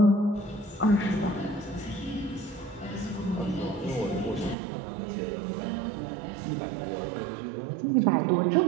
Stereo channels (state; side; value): drops out; left; at 4.5 s